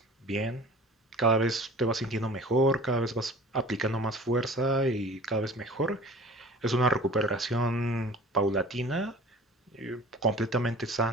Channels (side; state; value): both; normal; correlation 0.44